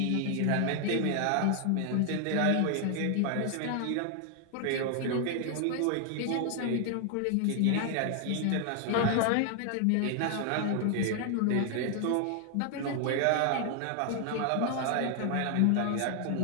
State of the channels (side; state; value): both; different; correlation 0.00